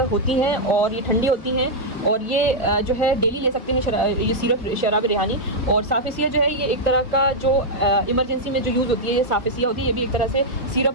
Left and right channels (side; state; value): both; normal; correlation -0.05